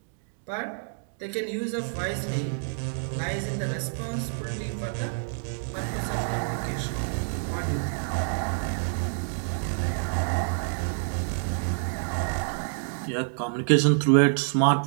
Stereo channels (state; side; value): silent; left; digital silence